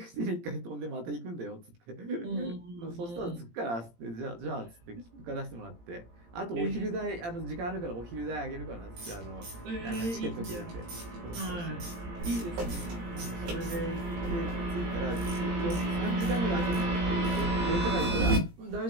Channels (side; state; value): left; late; 17 ms